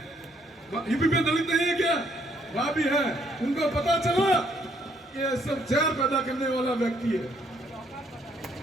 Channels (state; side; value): normal; both; correlation 0.68